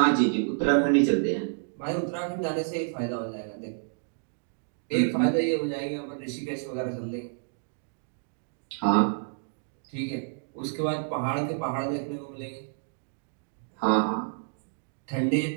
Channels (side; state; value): left; silent; digital silence